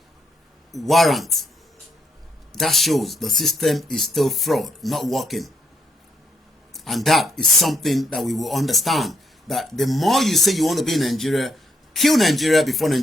warrant, that shows the system is still fraud, not working. And that is something that we will understand, that the more you say you want to be in Nigeria, kill Nigeria before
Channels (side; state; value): both; normal; correlation 0.74